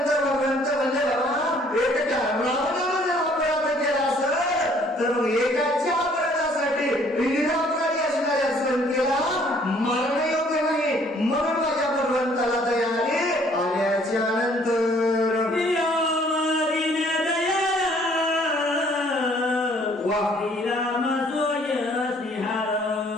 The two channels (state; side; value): normal; both; correlation 0.60